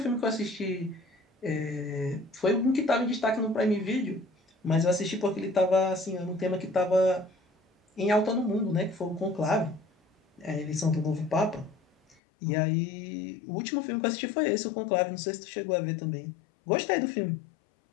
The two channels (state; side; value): drops out; right; at 12.2 s